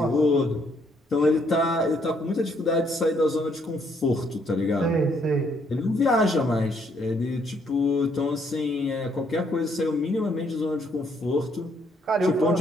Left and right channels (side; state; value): both; normal; correlation 0.69